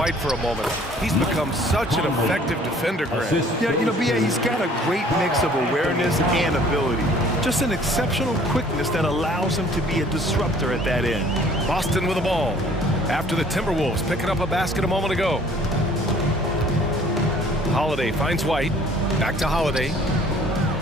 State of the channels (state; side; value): normal; both; correlation 0.55